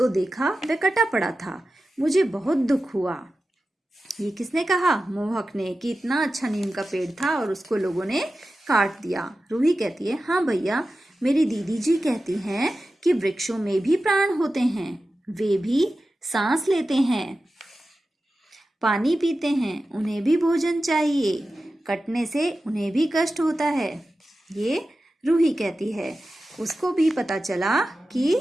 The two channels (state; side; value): normal; both; correlation 0.93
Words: देखा वह कटा पड़ा था। मुझे बहुत दुख हुआ। ये किसने कहा? मोहक ने, कि इतना अच्छा नीम का पेड़ था और उसको लोगों ने काट दिया। रूही कहती है, हाँ भैया, मेरी दीदी जी कहती हैं कि वृक्षों में भी प्राण होते हैं, वे भी सांस लेते हैं, पानी पीते हैं, उन्हें भी भोजन चाहिए, कटने से उन्हें भी कष्ट होता है। ये रूही कहती है। उसको भी पता चला कि